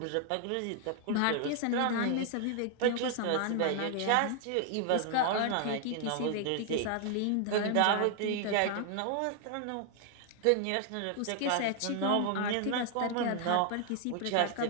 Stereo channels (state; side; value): different; both; correlation 0.00